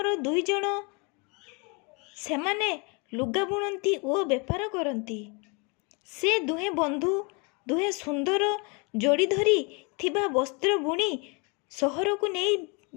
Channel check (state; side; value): quieter; right; 31.4 dB